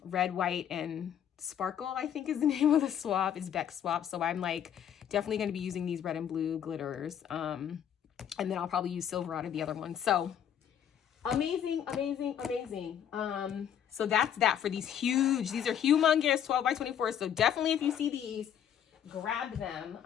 white, and sparkle, I think is the name of the swap. It's Beck swap. So I'm like definitely going to be using these red and blue glitters. And then I'll probably use silver out of the other one. So amazing, amazing, amazing. So that's that for these are humongous 12 by 24. So definitely, if you see these, grab them.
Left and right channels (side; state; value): right; quieter; 9.3 dB